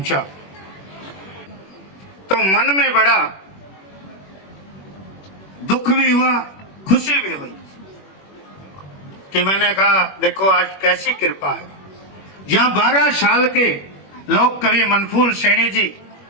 तो मन में बड़ा दुख भी हुआ, खुशी भी हुई कि मैंने कहा देखो आज कैसी कृपा है। जहां 12 साल के लोग कवि मनफूल सैनी जी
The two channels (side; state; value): right; late; 21 ms